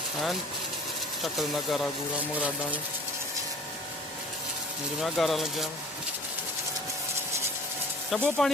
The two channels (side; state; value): both; normal; correlation 0.46